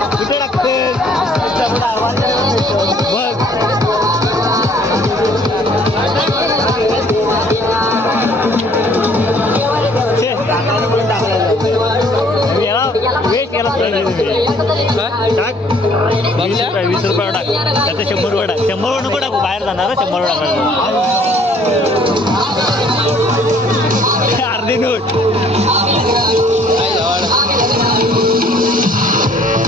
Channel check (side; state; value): both; normal; correlation 0.59